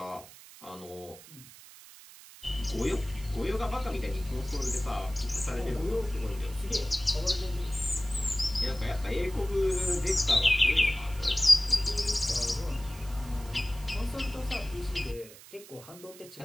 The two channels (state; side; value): noise; right; hiss, 19 dB below the sound